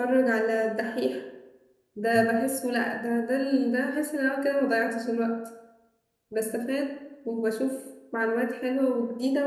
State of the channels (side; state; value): both; identical; correlation 1.00